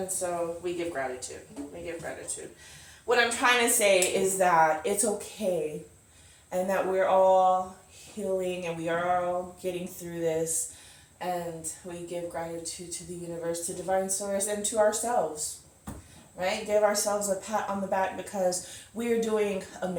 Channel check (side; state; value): both; identical; correlation 1.00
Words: so we give gratitude. We give gratitude. What I'm trying to say is that it's okay and that we're all healing and we are all getting through this, and we give gratitude to the universe, to divine source, and to ourselves, right? Give ourselves a pat on the back because we are doing